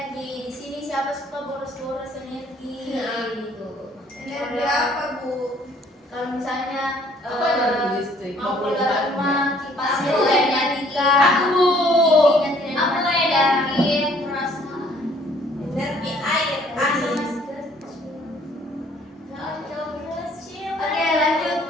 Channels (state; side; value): normal; both; correlation 0.60